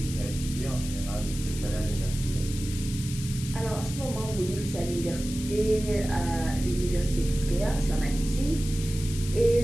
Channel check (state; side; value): noise; left; hiss, 11 dB below the sound